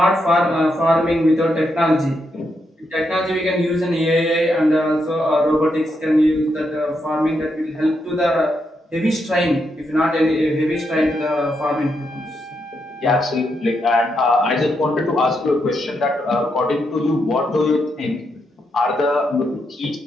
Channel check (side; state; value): both; normal; correlation 0.81